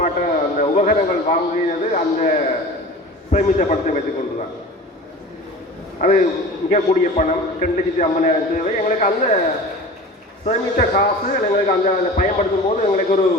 அந்த உபகரணங்கள் வாங்கியது அந்த சேமித்த பணத்தை வைத்துக் கொண்டுதான். அது மிகக்கூடிய பணம் 2,50,000 தேவை. எங்களுக்கு அந்த சேமித்த காசு எங்களுக்கு அந்த பயன்படுத்தும் போது எங்களுக்கு ஒரு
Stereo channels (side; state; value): both; normal; correlation 0.37